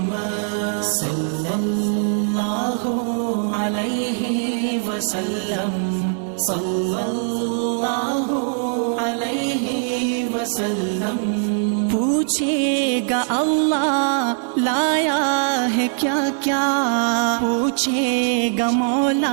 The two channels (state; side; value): silent; left; digital silence